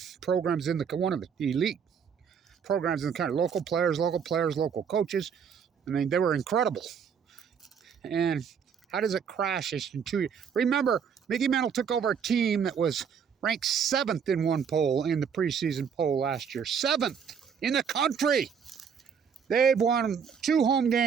programs in the, one of the elite programs in the country. Local players, local coaches. I mean, they were incredible. And how does it crash in 2 years? Remember, Mickey Mantle took over a team that was ranked 7th in one poll in the preseason poll last year. 7th in the country. They've won 2 home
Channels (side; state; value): left; quieter; 7.0 dB